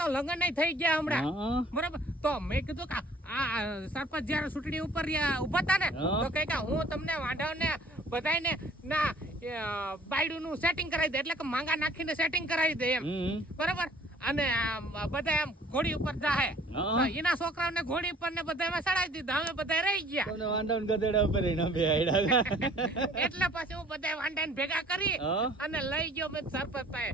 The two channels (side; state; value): both; normal; correlation 0.54